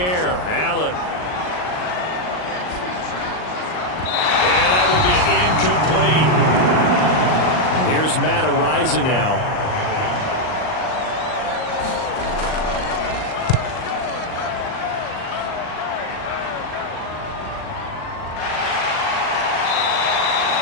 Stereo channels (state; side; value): late; right; 39 ms